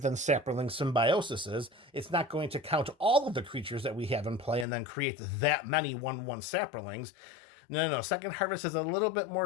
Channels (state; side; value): drops out; right; at 4.7 s